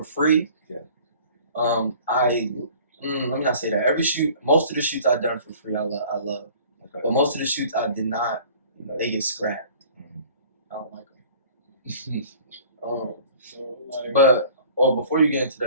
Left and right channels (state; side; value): inverted; both; correlation -0.48